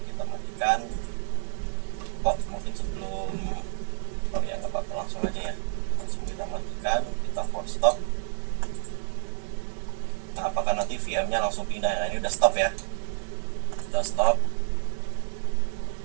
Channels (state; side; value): silent; left; digital silence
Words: kita matikan. Mungkin sebelum ya nggak apa-apa, langsung aja ya, langsung kita matikan, kita force stop. Nah apakah nanti VM-nya langsung pindah? Nah ini udah stop ya, udah stop.